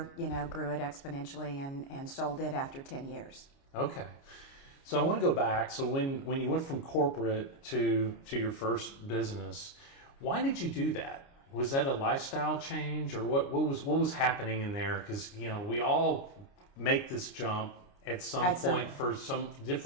grew it exponentially and sold it after 10 years. Okay. So I want to go back. So when you went from corporate to your first business, why did you do that? Was that a lifestyle change, or what was happening in there? Because we all make this jump at some point for some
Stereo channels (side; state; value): right; late; 29 ms